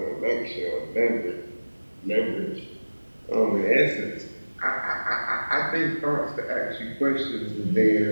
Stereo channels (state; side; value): inverted; both; correlation -1.00